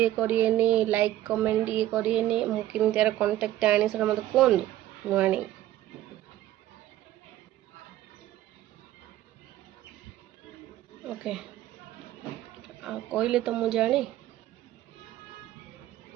କରିବେନି, ଲାଇକ୍ କମେଣ୍ଟ ଇଏ କରିବେନି। ମୁଁ କେମିତି ଆର କଣ୍ଟାକ୍ଟ ଆଣି ସେଟା ମୋତେ କୁହନ୍ତୁ, ମୁଁ ଆଣି। ଓକେ, ଆଉ କହିଲେ ତ ମୁଁ ଜାଣି।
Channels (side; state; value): left; quieter; 13.9 dB